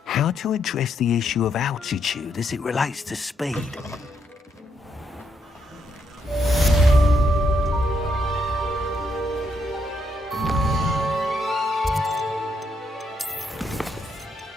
How to address the issue of altitude as it relates to speed?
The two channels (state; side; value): normal; both; correlation 0.77